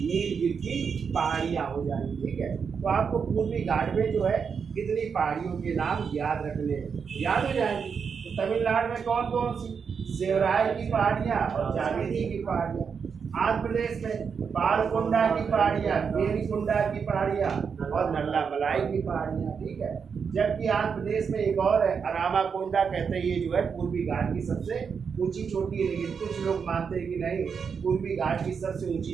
नीलगिरी की पहाड़ियाँ हो जाएंगी, ठीक है। तो आपको पूर्वी घाट में जो है कितनी पहाड़ियों के नाम याद रखने हैं, याद हो जाएंगी। तो तमिलनाडु में कौन कौन सी? सेवराय की पहाड़ियाँ और जावेदी की पहाड़ियाँ। आंध्र प्रदेश में पालकोंडा की पहाड़ियाँ, वेलिकोंडा की पहाड़ियाँ और नल्लामलाई की पहाड़ियाँ, ठीक है। जबकि आंध्र प्रदेश में एक और है, अरामाकोंडा कहते हैं, ये जो है पूर्वी घाट की सबसे ऊंची चोटी है। लेकिन कुछ लोग मानते हैं कि नहीं, पूर्वी घाट की सबसे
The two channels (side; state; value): left; quieter; 6.2 dB